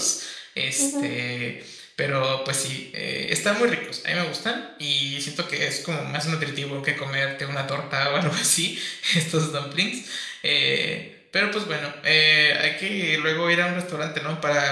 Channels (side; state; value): both; identical; correlation 1.00